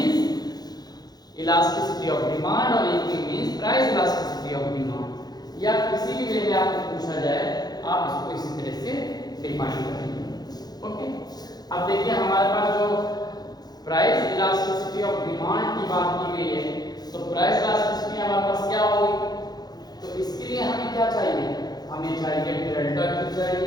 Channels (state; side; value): late; right; 0.19 ms